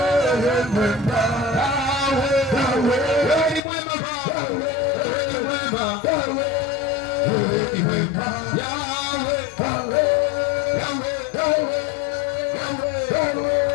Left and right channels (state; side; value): drops out; right; at 3.6 s